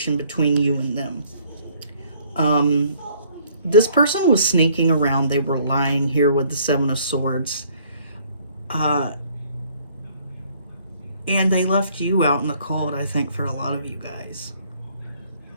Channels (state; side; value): inverted; both; correlation -0.60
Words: between you and them. This person was sneaking around. They were lying here with the Seven of Swords. And they left you out in the cold, I think, for a lot of you guys.